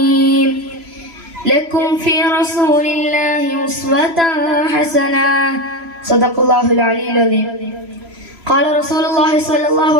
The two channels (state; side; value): late; left; 3.0 ms